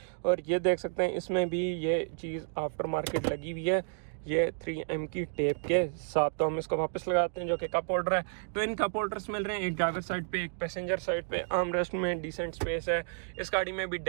और ये देख सकते हैं इसमें भी ये चीज़ आफ्टर मार्केट लगी हुई है। ये 3M की टेप के साथ। तो हम इसको वापस लगाते हैं, जो कि कप होल्डर है। ट्विन कप होल्डर्स मिल रहे हैं, एक ड्राइवर साइड पे एक पैसेंजर साइड पे। आर्म रेस्ट में डिसेंट स्पेस है। इस गाड़ी में भी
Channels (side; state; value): left; silent; digital silence